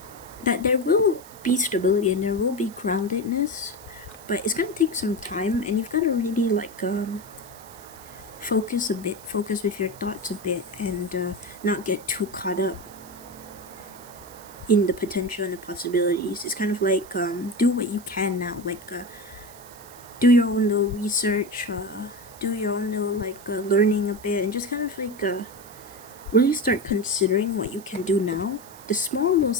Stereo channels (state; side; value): noise; right; hiss, 20 dB below the sound